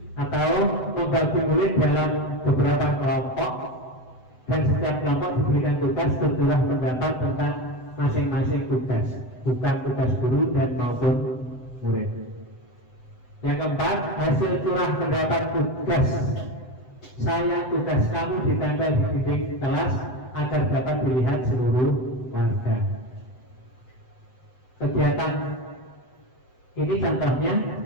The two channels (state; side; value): late; right; 7.9 ms